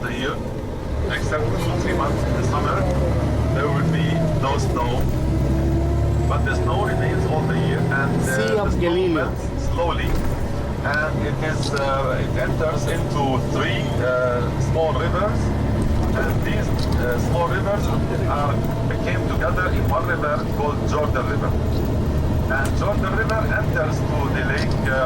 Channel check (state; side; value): identical; both; correlation 1.00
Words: the year, except 2-3 months in the summer, there will be no snow. but the snow remains all the year, and Sea of the snow Galilee. melts slowly, and it enters into three small rivers, and these small rivers came together in one river called Jorden River. And Jordan River enters to the lake